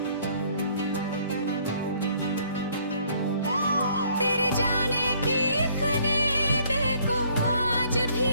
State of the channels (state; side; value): inverted; both; correlation -0.62